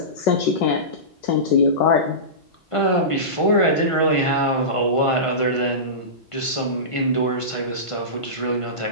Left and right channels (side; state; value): right; late; 1.5 ms